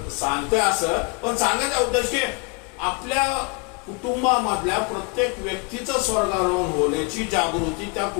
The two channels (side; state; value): right; quieter; 31.9 dB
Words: सांगतोय असं, पण सांगायचा उद्देश की आपल्या कुटुंबामधल्या प्रत्येक व्यक्तीचं स्वर्गारोहण होण्याची जागृती त्या